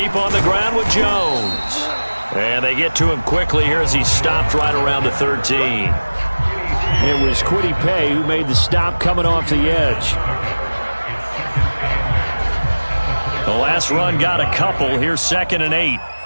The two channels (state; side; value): inverted; both; correlation -1.00